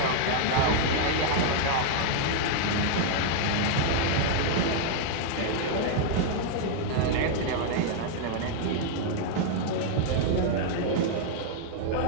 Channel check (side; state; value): both; different; correlation 0.00